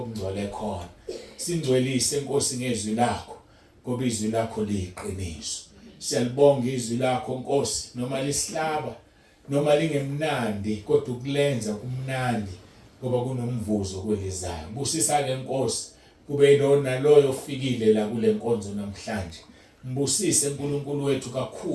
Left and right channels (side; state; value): both; identical; correlation 1.00